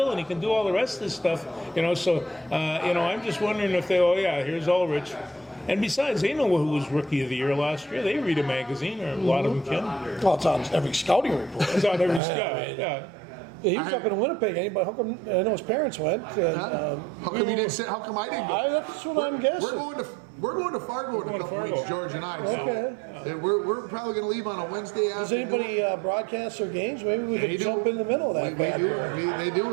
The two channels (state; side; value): drops out; left; at 12.2 s